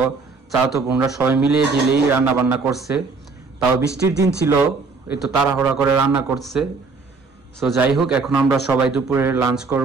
চাচাতো বোনরা সবাই মিলিয়ে দিলেই রান্না বান্না করছে। তাও বৃষ্টির দিন ছিল, একটু তাড়াহুড়া করে রান্না করছে। সো যাই হোক, এখন আমরা সবাই দুপুরের লাঞ্চ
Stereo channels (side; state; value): left; quieter; 4.2 dB